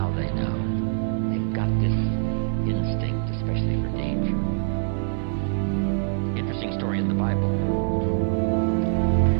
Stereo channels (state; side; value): silent; left; 62 dB below the other